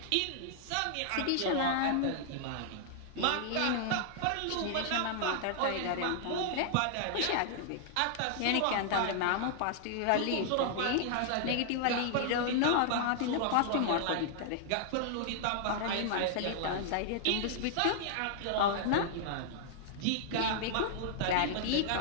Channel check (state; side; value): different; both; correlation -0.01